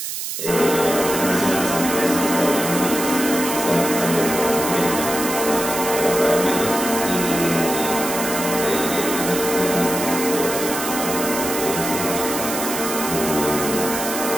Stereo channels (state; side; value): noise; right; hiss, 5 dB below the sound